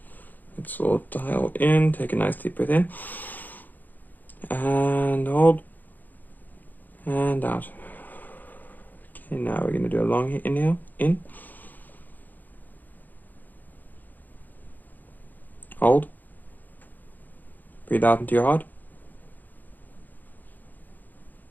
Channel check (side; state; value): right; late; 0.085 ms